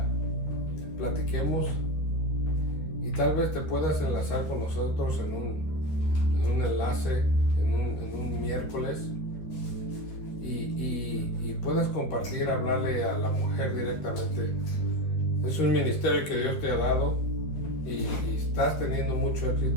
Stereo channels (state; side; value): late; right; 12 ms